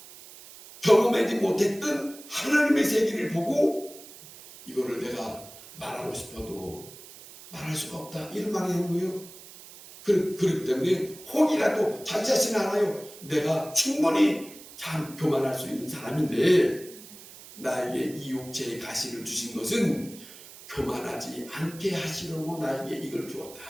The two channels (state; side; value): noise; right; hiss, 18 dB below the sound